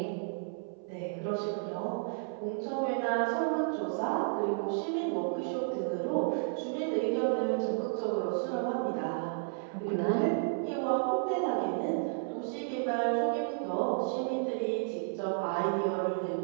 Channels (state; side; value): silent; left; 56 dB below the other